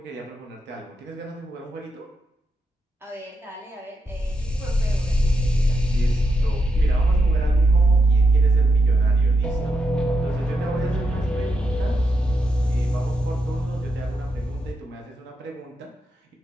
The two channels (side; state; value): both; normal; correlation 0.83